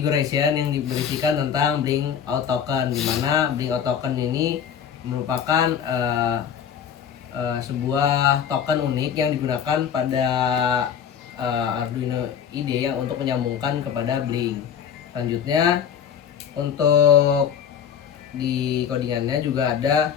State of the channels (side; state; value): right; quieter; 8.2 dB